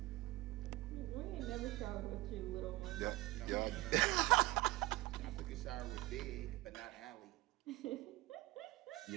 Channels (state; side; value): quieter; left; 19.7 dB